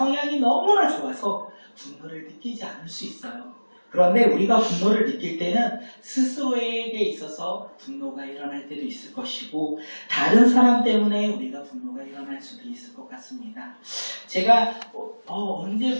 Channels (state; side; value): inverted; both; correlation -1.00